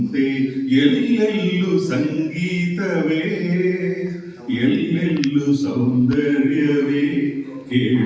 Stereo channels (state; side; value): identical; both; correlation 1.00